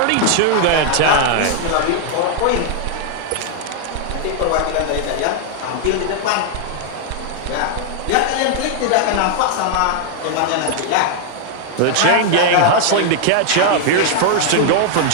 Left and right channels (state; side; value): different; both; correlation 0.00